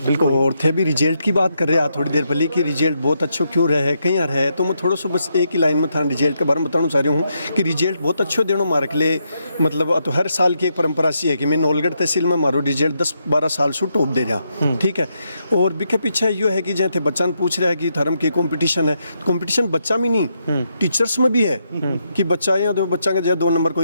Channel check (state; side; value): inverted; both; correlation -0.80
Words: बिल्कुल। और थे भी रिजल्ट की बात कर रहे हैं थोड़ी देर पहले कि रिजल्ट बहुत अच्छो क्यों रहे कहीं रहे, तो मैं थोड़ा सा बस एक ही लाइन में था रिजल्ट के बारे में बताना चाह रहा हूँ कि रिजल्ट बहुत अच्छो देना मारे के लिए मतलब तो हर साल की एक परंपरा सी है कि मैं नवलगढ़ तहसील में मारो रिजल्ट 10-12 साल से टॉप दे रहा, ठीक है। और बिके पीछे यो है कि जैसे बच्चा पूछ रहा है कि धर्म की कॉम्पिटिशन है, कंपटीशन बच्चा में नहीं टीचर्स में भी है कि बच्चा यहाँ तो बच्चा का 2 नंबर